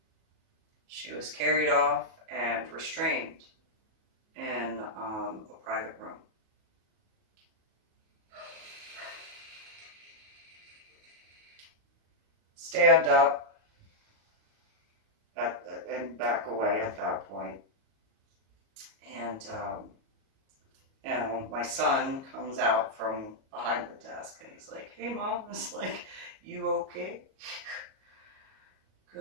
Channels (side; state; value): left; late; 38 ms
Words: she was carried off and restrained in a private room. Stand up and back away at that point. And, you know, my son comes out from behind the desk and he's like, "Hey, Mom." It's like, "You okay?"